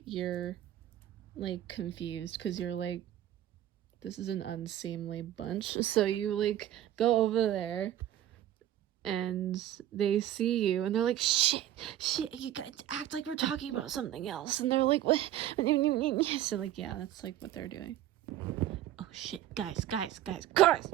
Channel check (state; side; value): quieter; left; 12.5 dB